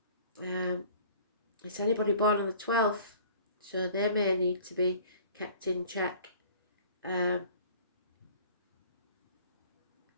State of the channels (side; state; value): both; inverted; correlation -0.50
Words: It's anybody born on the 12th, so they may need to be kept in check. You